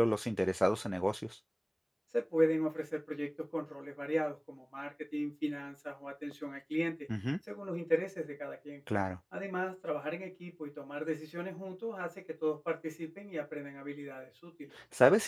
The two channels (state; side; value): identical; both; correlation 1.00